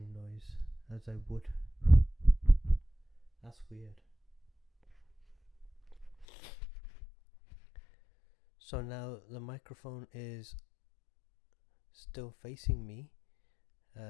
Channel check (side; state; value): right; drops out; at 6.2 s